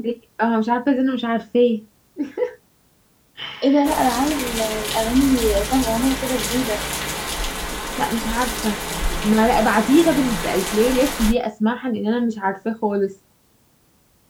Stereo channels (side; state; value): both; identical; correlation 1.00